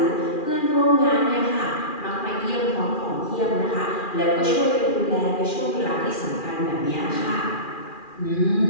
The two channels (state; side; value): late; right; 2.4 ms